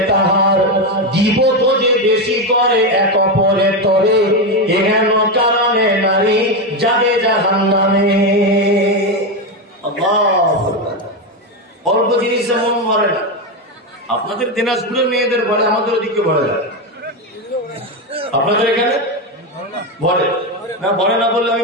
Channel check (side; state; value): both; normal; correlation 0.11